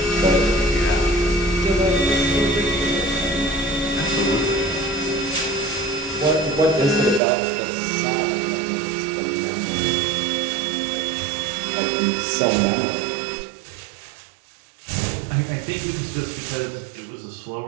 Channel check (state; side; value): drops out; left; at 7.2 s